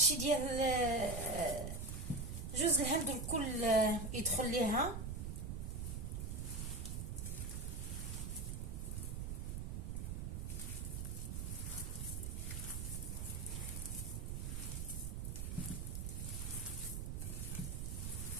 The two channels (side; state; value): right; noise; rumble, 3 dB below the sound